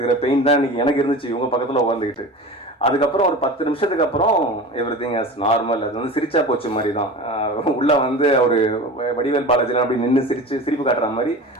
பெயின் தான் இன்னைக்கு எனக்கு இருந்துச்சு இவங்க பக்கத்தில் உட்காந்துக்கிட்டு. அதுக்கப்புறம் ஒரு 10 நிமிஷத்துக்கு அப்புறம் எவ்ரிதிங் ஆஸ் நார்மல். அது வந்து சிரிச்சா போச்சு மாதிரி தான். உள்ள வந்து அவர் வடிவேல் பாலாஜிலாம் அப்படி நின்று சிரிப்பு காட்டுற மாதிரி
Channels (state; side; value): normal; both; correlation 0.33